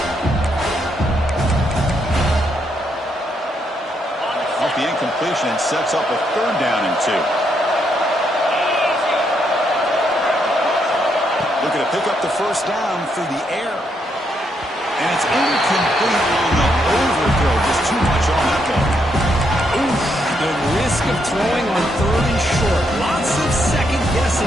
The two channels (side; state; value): both; normal; correlation 0.77